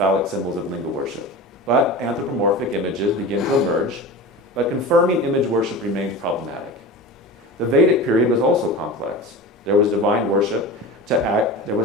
symbols of linga worship. But anthropomorphic images begin to emerge, but confirming image worship remains problematic. The Vedic period was also complex. There was divine worship to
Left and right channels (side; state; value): both; normal; correlation 0.31